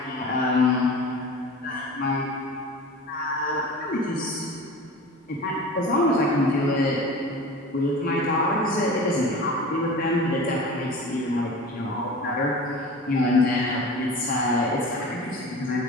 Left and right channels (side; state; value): both; normal; correlation 0.36